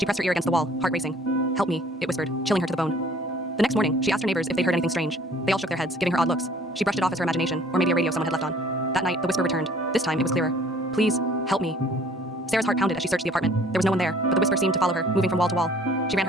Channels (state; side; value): normal; both; correlation 0.54